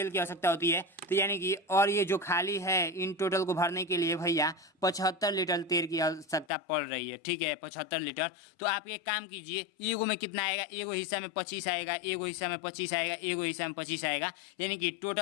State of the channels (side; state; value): right; drops out; at 6.5 s